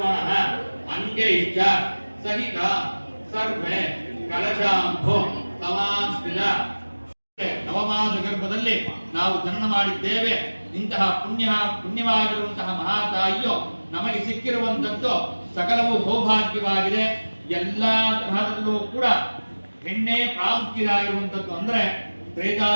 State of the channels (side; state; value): both; inverted; correlation -1.00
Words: ಅಂಗೈಶ್ಚ ಸಹಿತ ಸರ್ವೆ ಕಲಶಾಂಭೋ ಸಮಾಸ್ಥಿತ ನವಮಾಸ ಗರ್ಭದಲ್ಲಿ ನಾವು ಜನನ ಮಾಡಿದ್ದೇವೆ. ಇಂತಹ ಪುಣ್ಯವಾಗಿರುವಂತಹ ಮಹಾತಾಯಿಯು ನಮಗೆ ಸಿಕ್ಕಿರುವಂತದ್ದು ಸಕಲವೂ ಸೌಭಾಗ್ಯವಾಗಿದೆ. ಎಲ್ಲಾ ತರಹದಲ್ಲೂ ಕೂಡ ಹೆಣ್ಣೆ ಪ್ರಾಮುಖ್ಯವಾಗಿರುವಂತದ್ದು. ಅಂದ್ರೆ